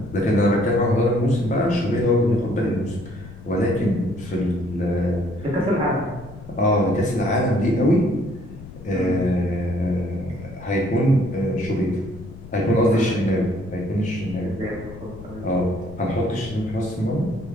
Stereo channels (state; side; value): noise; left; rumble, 15 dB below the sound